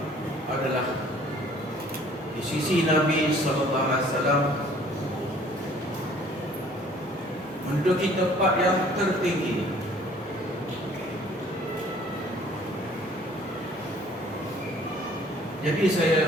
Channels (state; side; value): normal; both; correlation 0.55